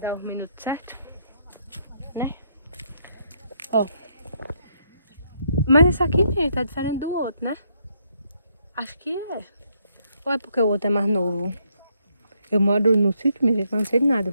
os minutos certos, né? Ó. Mas esse aqui, gente, tá diferente do outro, né? Acho que é. Ou é porque o outro é mais novo? Eu moro no sítio, minha gente, mas não sei de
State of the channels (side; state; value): both; inverted; correlation -0.73